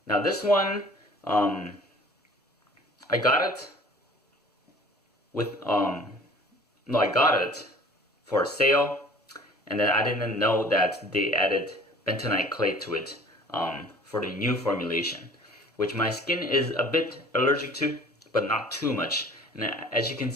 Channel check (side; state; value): both; normal; correlation 0.49